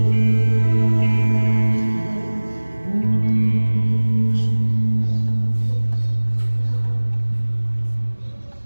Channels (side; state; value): both; inverted; correlation -1.00